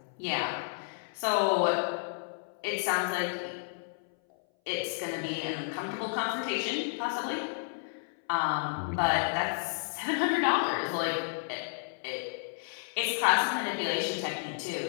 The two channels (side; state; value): right; silent; 57 dB below the other